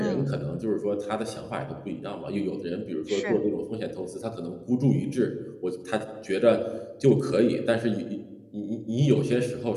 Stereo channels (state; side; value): identical; both; correlation 1.00